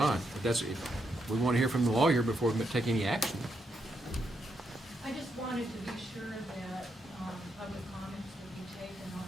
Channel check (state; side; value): normal; both; correlation 0.80